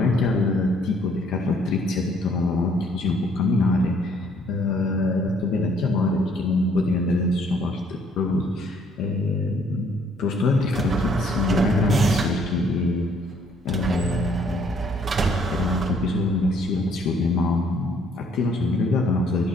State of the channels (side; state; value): both; normal; correlation 0.64